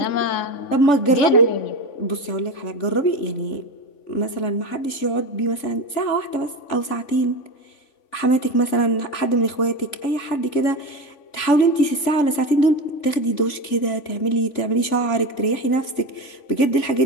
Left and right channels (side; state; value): right; late; 3.5 ms